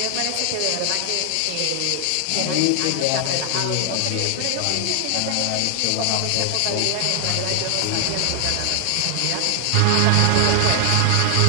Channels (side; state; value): both; different; correlation 0.00